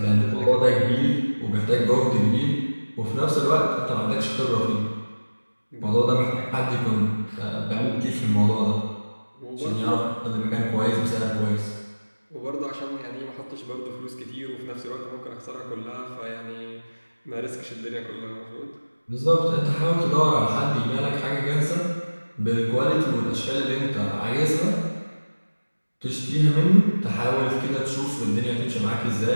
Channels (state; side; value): inverted; both; correlation -1.00